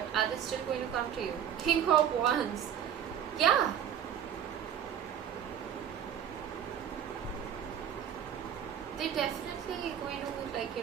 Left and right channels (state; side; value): quieter; left; 9.2 dB